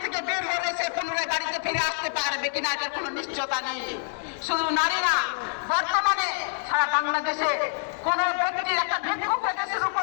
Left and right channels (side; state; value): right; silent; digital silence